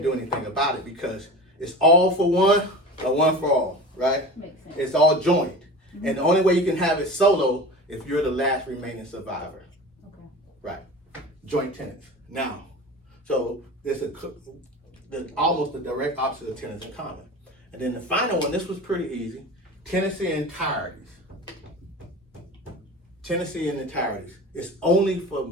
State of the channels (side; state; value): both; normal; correlation 0.33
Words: do anything about it because it's all for one or one for all, right? Makes sense. It's all joint. And the only way you can have it solo if you're the last remaining survivor. Okay. Right. Joint tenants. Now, so there's almost the direct opposite of tenants in common. And then the final one, this was pretty easy. Tenancy in entireties. Tenancy in entireties. It's only for